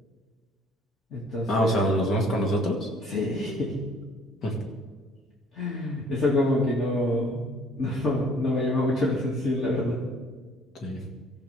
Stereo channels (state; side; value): normal; both; correlation 0.57